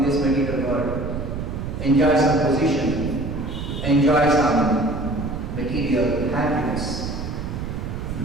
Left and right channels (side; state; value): right; noise; rumble, 5 dB below the sound